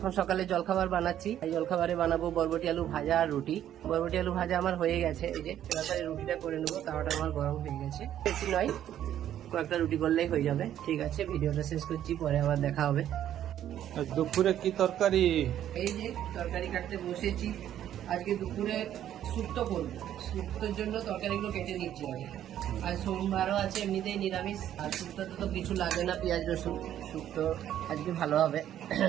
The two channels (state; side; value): quieter; left; 11.1 dB